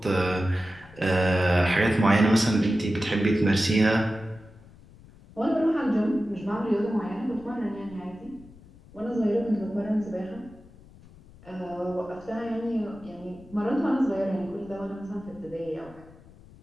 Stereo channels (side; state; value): left; noise; rumble, 22 dB below the sound